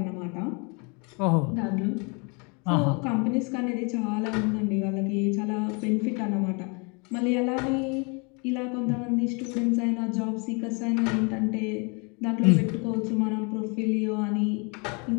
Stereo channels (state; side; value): quieter; right; 32.9 dB